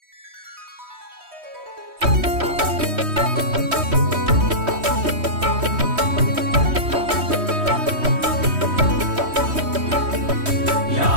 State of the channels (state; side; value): late; left; 3.1 ms